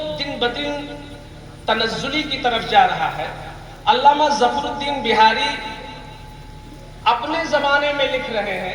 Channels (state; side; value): identical; both; correlation 1.00